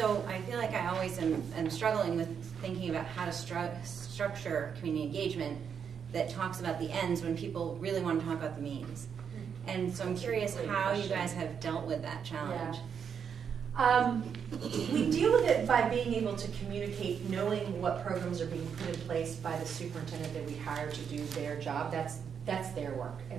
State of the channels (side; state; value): left; quieter; 7.2 dB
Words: I feel like I always am struggling with thinking about how to structure community engagement that talks about the ends when people really want to talk about the means. And so I'm curious how you guys have dealt with that challenge. Yeah. We deal with it by being able to communicate, knowing what programs are being put in place by the superintendent that we hire to do their job. That's their work,